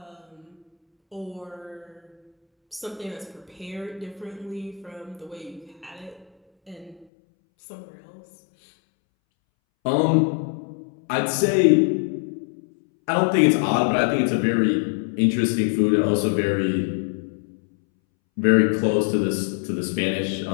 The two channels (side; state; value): right; drops out; at 7.1 s